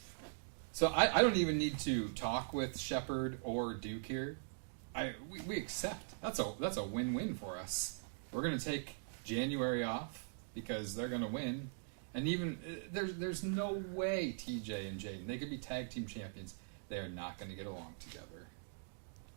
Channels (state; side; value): silent; left; digital silence